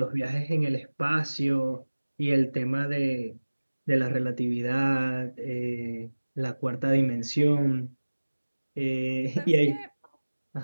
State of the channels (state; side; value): inverted; both; correlation -1.00